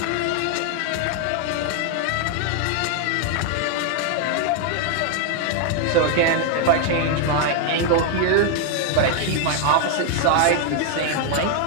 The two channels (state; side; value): different; both; correlation 0.00